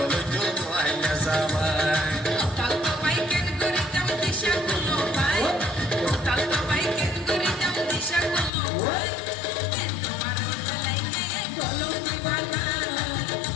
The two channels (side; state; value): right; drops out; at 8.5 s